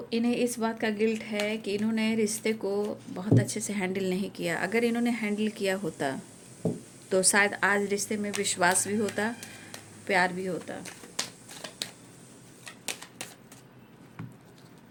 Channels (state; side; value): identical; both; correlation 1.00